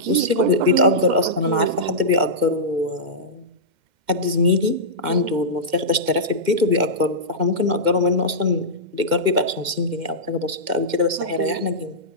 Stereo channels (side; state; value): left; late; 2.1 ms